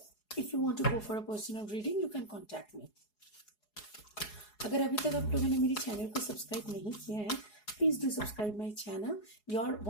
if you want to go for a personal reading, you can contact me. अगर अभी तक आप लोगों ने मेरी चैनल को सब्सक्राइब नहीं किया है, please do subscribe my channel. Your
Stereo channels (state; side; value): late; right; 4.8 ms